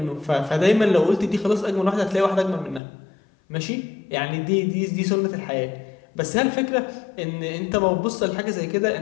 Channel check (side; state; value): right; drops out; at 2.8 s